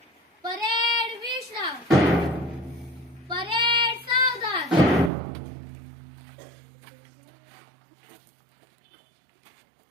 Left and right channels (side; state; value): left; drops out; at 5.1 s